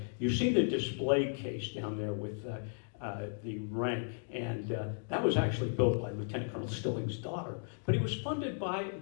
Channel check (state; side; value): silent; right; digital silence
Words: you see the display case down there with the rank, and that was actually built by Lieutenant Colonel Stilling's daughter, but it was funded